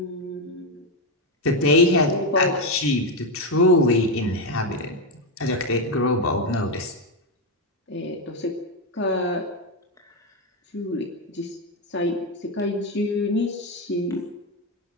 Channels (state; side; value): normal; both; correlation 0.07